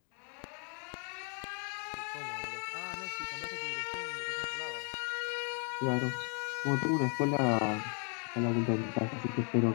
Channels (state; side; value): quieter; right; 39.6 dB